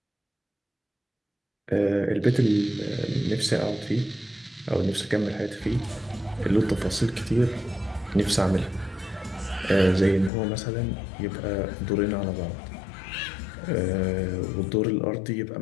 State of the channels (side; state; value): right; drops out; at 10.3 s